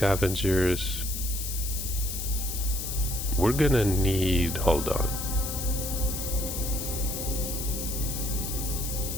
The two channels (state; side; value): noise; left; hiss, 5 dB below the sound